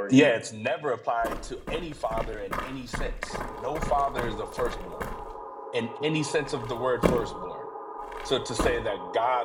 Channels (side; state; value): both; identical; correlation 1.00